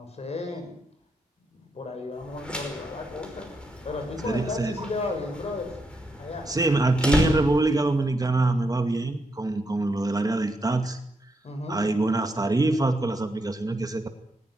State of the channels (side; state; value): both; normal; correlation 0.80